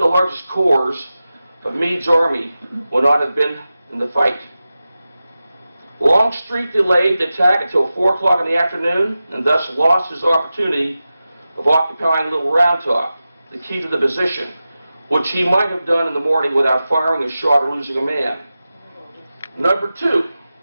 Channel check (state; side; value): inverted; both; correlation -0.94